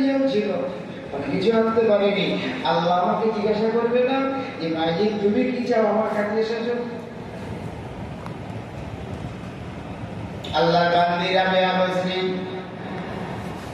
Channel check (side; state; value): both; identical; correlation 1.00